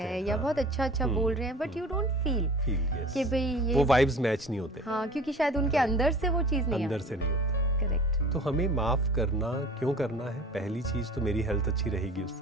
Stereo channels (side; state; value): both; normal; correlation 0.43